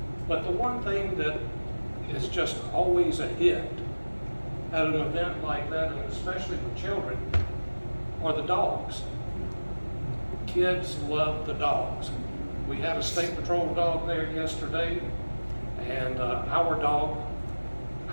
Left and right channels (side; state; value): both; inverted; correlation -1.00